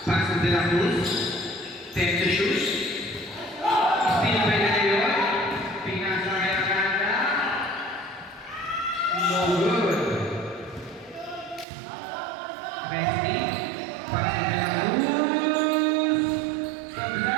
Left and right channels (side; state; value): left; drops out; at 11.7 s